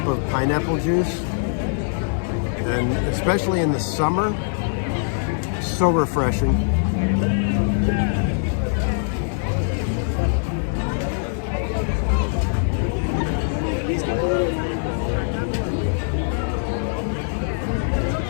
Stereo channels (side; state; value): right; silent; digital silence